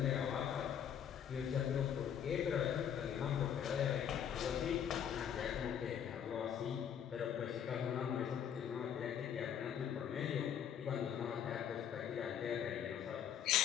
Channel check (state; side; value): quieter; right; 8.9 dB